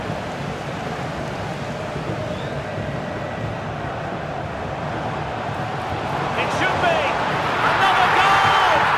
It should be! Another goal!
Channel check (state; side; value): identical; both; correlation 1.00